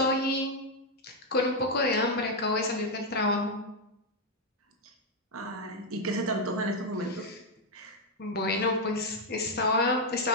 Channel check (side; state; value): both; normal; correlation 0.01